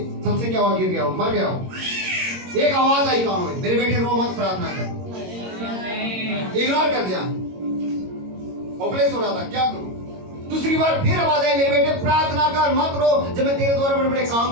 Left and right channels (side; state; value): left; late; 22 ms